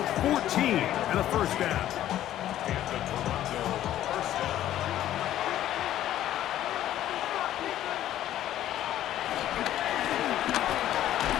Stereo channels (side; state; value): right; quieter; 12.6 dB